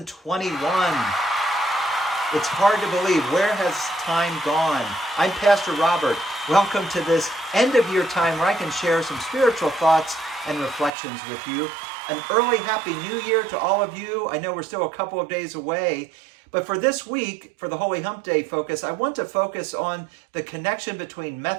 It's hard to believe. Where has time gone? I'm Pastor Robert. Welcome to this end of year time where I can share some spiritual thoughts and reflections with you. An early Happy New Year to all of you. I know we're still a couple of days away. But for this week, for the Holy Hump Day focus, I want to focus on the connection between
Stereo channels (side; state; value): left; drops out; at 10.9 s